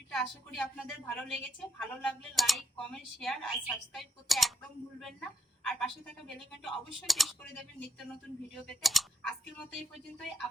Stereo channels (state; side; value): normal; both; correlation 0.81